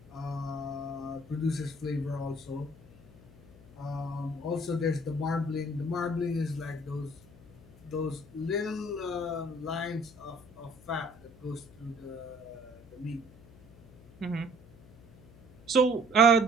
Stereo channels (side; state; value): left; noise; hum, 22 dB below the sound